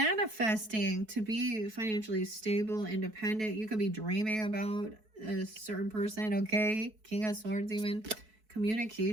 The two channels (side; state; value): left; late; 4.6 ms